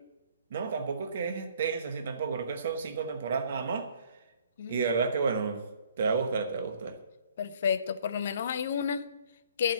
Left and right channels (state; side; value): inverted; both; correlation -0.59